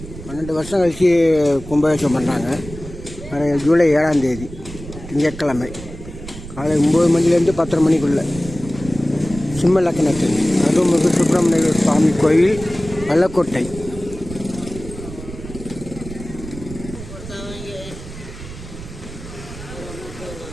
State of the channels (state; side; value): noise; right; rumble, 13 dB below the sound